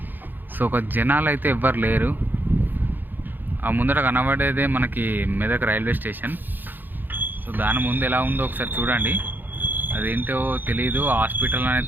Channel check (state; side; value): late; left; 0.090 ms